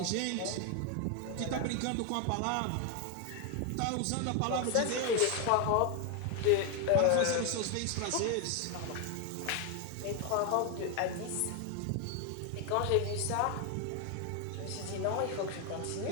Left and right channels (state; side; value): different; both; correlation 0.01